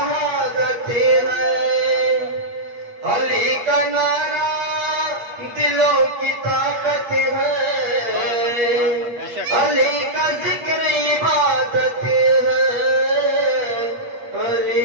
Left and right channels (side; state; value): left; late; 8.4 ms